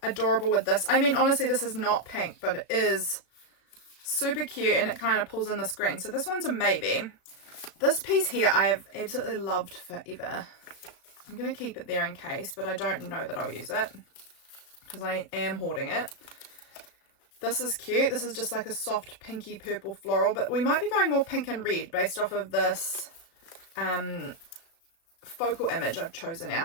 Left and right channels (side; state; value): right; late; 36 ms